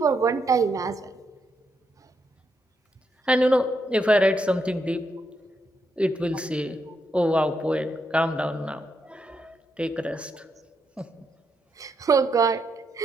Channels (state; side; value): normal; both; correlation 0.80